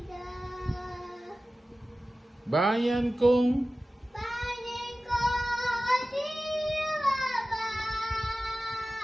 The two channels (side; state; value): both; normal; correlation 0.96